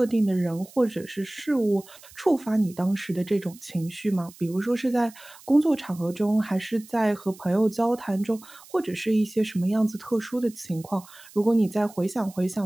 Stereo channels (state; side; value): noise; right; hiss, 22 dB below the sound